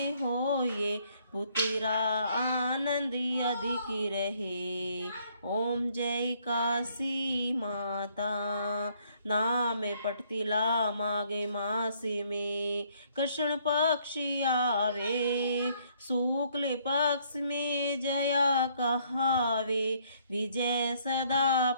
हो ये पुत्रा आनंद अधिक रहे। ओम जय काशी माता। नाम पटतिला माघे मास में कृष्ण पक्ष आवे, शुक्ल पक्ष में जया कहावे, विजय सदा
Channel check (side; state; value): both; inverted; correlation -0.66